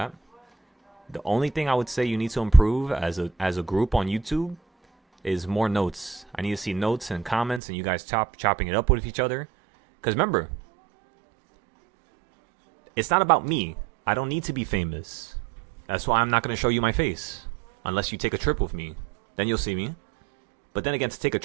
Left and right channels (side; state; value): left; drops out; at 7.6 s